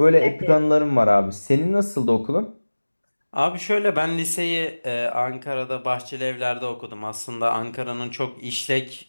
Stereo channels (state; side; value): inverted; both; correlation -1.00